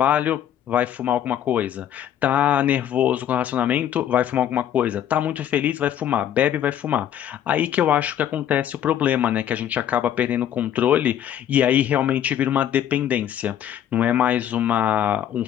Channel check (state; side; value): quieter; right; 10.4 dB